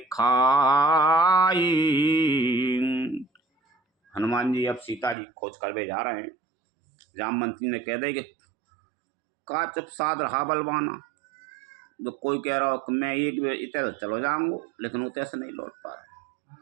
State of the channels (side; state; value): left; drops out; at 5.2 s